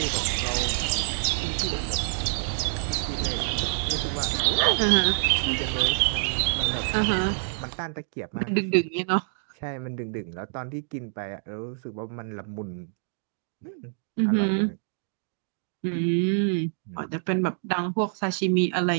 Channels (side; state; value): left; silent; digital silence